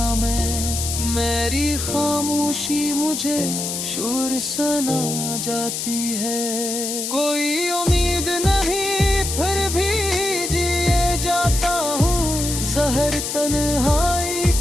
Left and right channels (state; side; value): noise; left; hiss, 3 dB below the sound